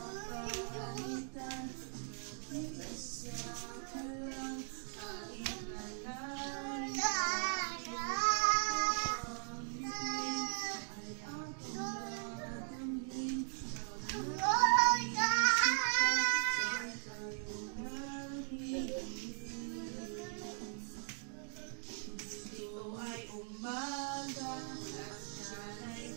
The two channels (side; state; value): left; silent; 52 dB below the other